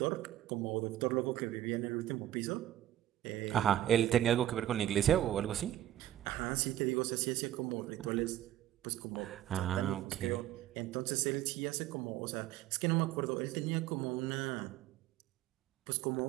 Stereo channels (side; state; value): left; quieter; 12.9 dB